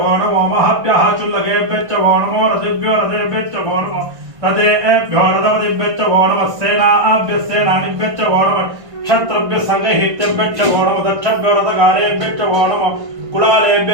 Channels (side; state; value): left; late; 1.6 ms